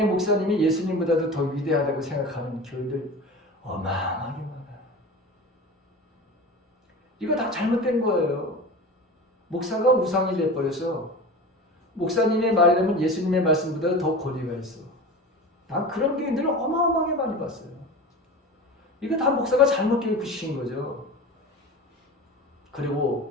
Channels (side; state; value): both; normal; correlation 0.32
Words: 목사님이 예수님보다도 더 위대하다고 생각하는 교인들 어마어마하게 많아요. 이거 다 잘못된 거예요. 목사가 우상이 돼버려서 목사님의 말이라면 예수님의 말씀보다 더 권위가 있어. 난 그런 교인들을 어마어마하게 많이 봤어요. 이거 다 목사가 잘못 교육시킨 거죠.